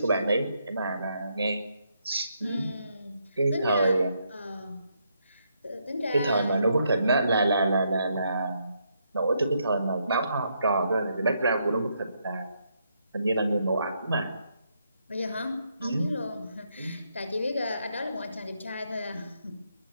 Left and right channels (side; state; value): both; inverted; correlation -0.77